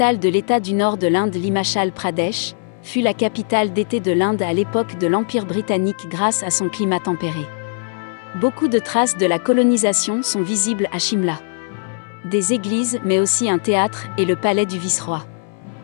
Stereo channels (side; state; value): right; silent; 66 dB below the other